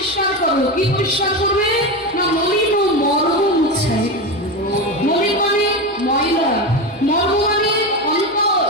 করো। কি পরিষ্কার করবে না, মলিন ও মর্ম মুছায়। মলিন মানে ময়লা, মর্ম মানে অন্তর।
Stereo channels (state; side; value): normal; both; correlation 0.18